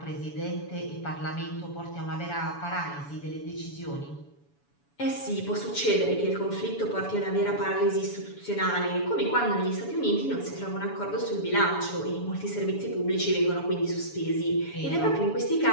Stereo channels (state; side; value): late; right; 7.0 ms